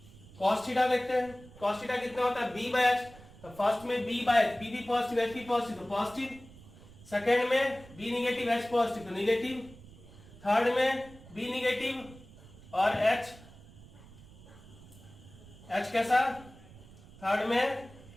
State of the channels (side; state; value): right; noise; rumble, 20 dB below the sound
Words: cos theta देखते हैं, cos थीटा कितना होता है b बाय h। तो फर्स्ट में b बाय p भी पॉजिटिव h भी पॉजिटिव तो पॉजिटिव, सेकेंड में b निगेटिव h पॉजिटिव तो निगेटिव, थर्ड में b निगेटिव और h कैसा, थर्ड में